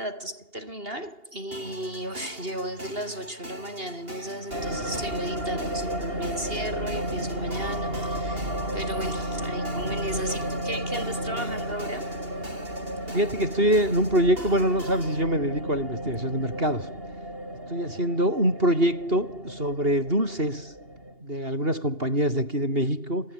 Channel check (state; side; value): late; left; 2.8 ms